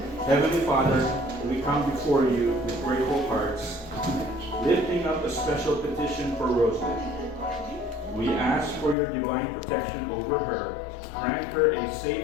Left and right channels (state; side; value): drops out; right; at 9.0 s